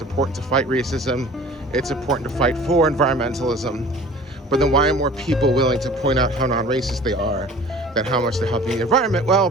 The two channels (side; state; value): both; normal; correlation 0.45